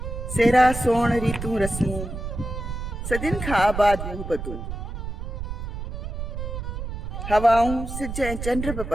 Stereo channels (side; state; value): right; noise; rumble, 6 dB below the sound